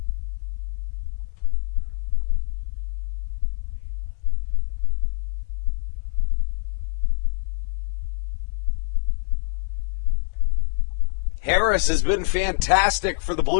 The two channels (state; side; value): silent; right; 62 dB below the other